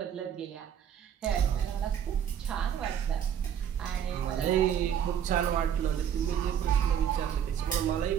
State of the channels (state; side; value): quieter; left; 9.0 dB